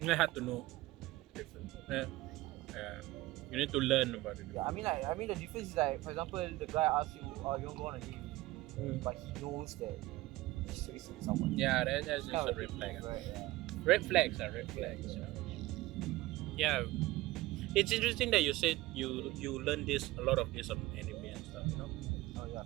You have to know. You need to learn about it. Yeah, I mean the difference is like, for example, the guy asks you, "Oh, you want to go on a date?" But he knows that he's chasing someone. Yeah, that's just a red flag. Right? Yeah. Red flags are red flags. Yeah, it's interesting that you said you learn a lot of this on anime and stuff. Oh yeah,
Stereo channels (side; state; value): left; quieter; 18.5 dB